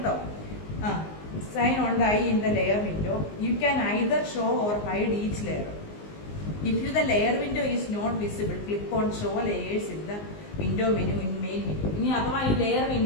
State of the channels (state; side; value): late; right; 19 ms